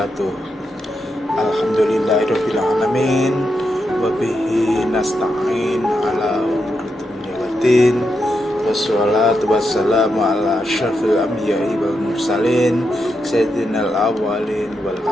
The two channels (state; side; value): normal; both; correlation 0.84